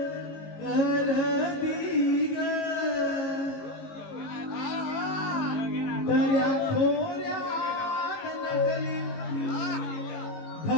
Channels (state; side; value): late; right; 18 ms